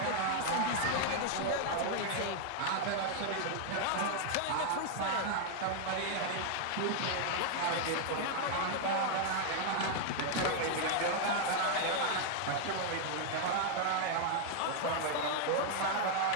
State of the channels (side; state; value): both; different; correlation 0.00